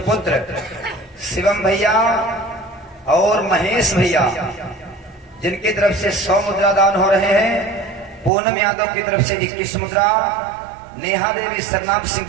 शिवम भैया और महेश भैया जिनकी तरफ से 100 मुद्रा दान हो रहे हैं। पूनम यादव की तरफ से 21 मुद्रा। नेहा देवी सरनाम सिंह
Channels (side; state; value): left; drops out; at 8.3 s